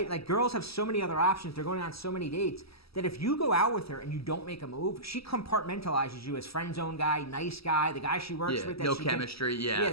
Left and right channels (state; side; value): late; right; 0.76 ms